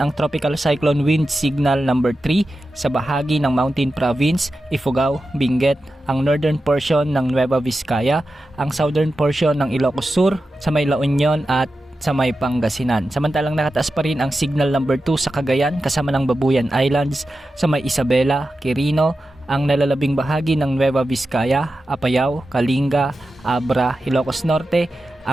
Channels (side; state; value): both; normal; correlation 0.92